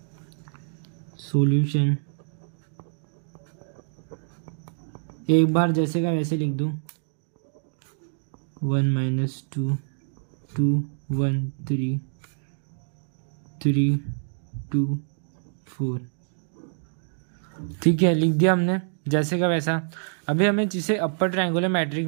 सॉल्यूशन एक बार जैसे का वैसे लिख दूँ, 1 - 2 2 1 3 3 2 4। ठीक है, लिख दिया हमने जैसे का वैसा। अभी हमें जिसे अपर ट्रायंगुलर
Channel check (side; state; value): left; silent; digital silence